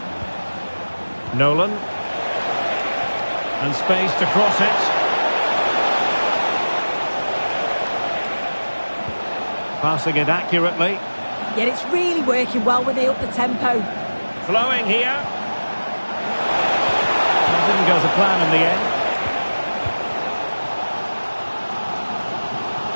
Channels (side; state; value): both; inverted; correlation -1.00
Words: Nolan. And space to cross it. Passing it accurately. Yet it's really working well when they up the tempo. Flowing here. It didn't go to plan in the end.